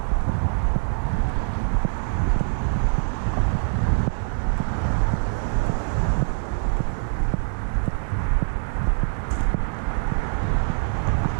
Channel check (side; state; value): left; silent; digital silence